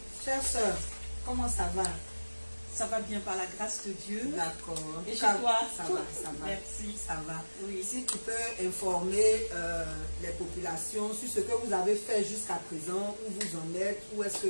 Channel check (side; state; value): both; inverted; correlation -1.00